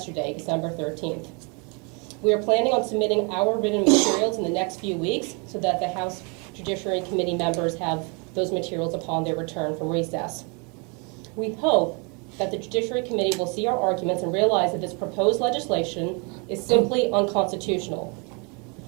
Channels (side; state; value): left; quieter; 33.7 dB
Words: December 13th. We are planning on submitting our written materials in the next few weeks so that the House Judiciary Committee members have those materials upon their return from recess. We hope that the Judiciary Committee will see our arguments and realize that this proposed legislation is simply unconstitutional.